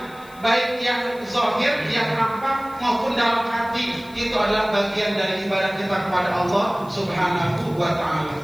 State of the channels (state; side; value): noise; left; hiss, 24 dB below the sound